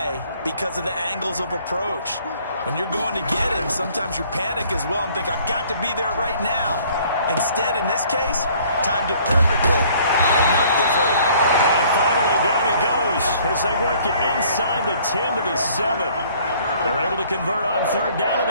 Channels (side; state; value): both; inverted; correlation -0.57